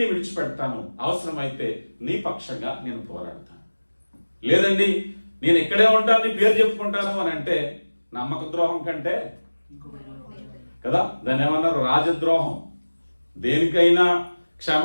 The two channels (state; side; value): inverted; both; correlation -1.00